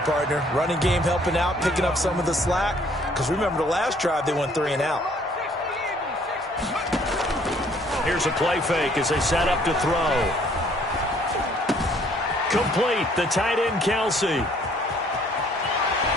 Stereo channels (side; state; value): both; normal; correlation 0.61